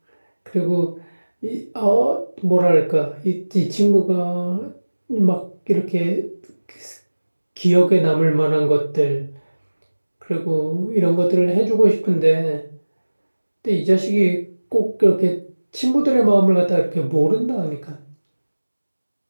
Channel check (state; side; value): inverted; both; correlation -1.00